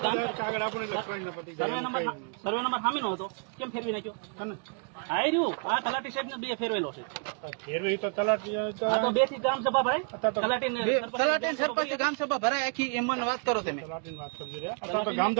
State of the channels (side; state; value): left; quieter; 39.3 dB